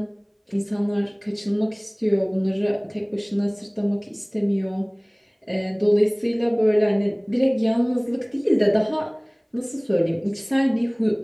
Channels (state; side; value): identical; both; correlation 1.00